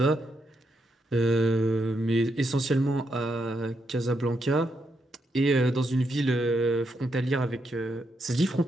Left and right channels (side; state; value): both; normal; correlation 0.81